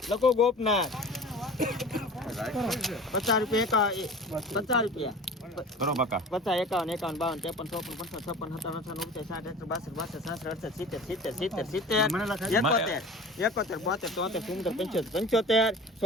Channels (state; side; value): normal; both; correlation 0.39